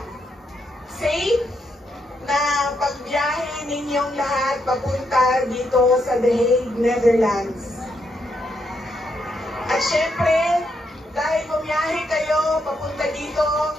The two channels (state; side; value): normal; both; correlation 0.79